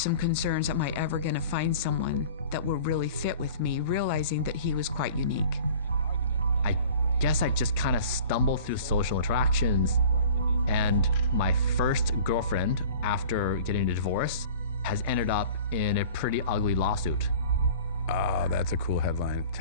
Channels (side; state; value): both; inverted; correlation -0.43